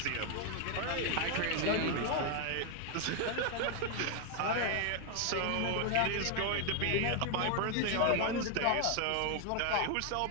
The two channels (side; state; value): both; different; correlation 0.01